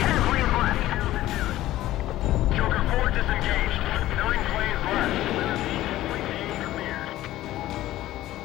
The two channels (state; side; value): quieter; right; 15.1 dB